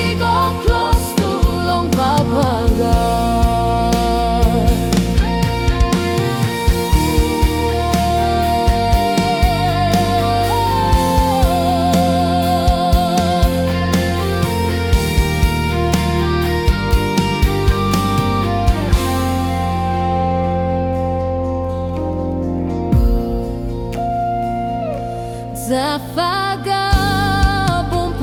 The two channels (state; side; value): identical; both; correlation 1.00